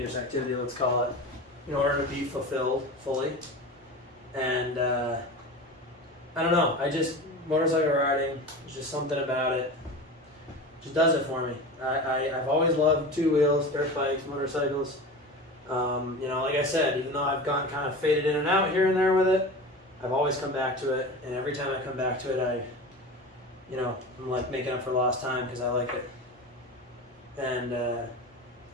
activity, let's call it, in order to be fulfilled fully. And I don't know, motorcycle riding, there's just something about it. Just does it for me. I've always loved two wheels, dirt bikes, motorcycles. You know, like I said, even though I've gotten kind of faded in and out here and there with it, I've always come back to it, and every time I come back to it, I'm like making up for lost time because I like it. And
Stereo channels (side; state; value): both; normal; correlation 0.31